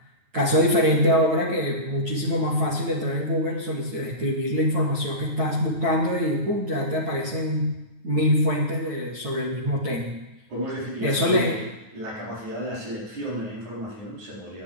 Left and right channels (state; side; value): late; left; 9.4 ms